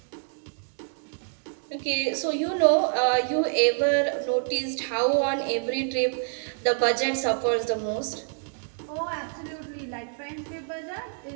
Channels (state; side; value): silent; left; 60 dB below the other